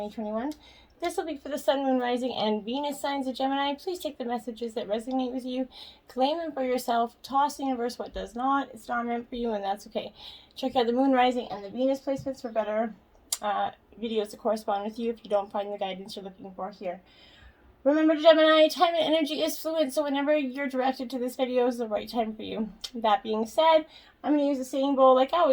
This will be for the Sun, Moon, Rising, and Venus signs of Gemini. Please take the messages that resonate with you, claim them for yourself, toss the universe what does not. It's not meant for you, and that's okay. Check out the Moon, Rising, and the Venus placements for better videos to correspond with you if you don't find the guidance you're looking for here. Remember, Gemini, time and energy is fluid, so whenever you're directed to this video is the right time for you. That being said, I'm going to use the singing bowl like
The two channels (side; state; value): both; identical; correlation 1.00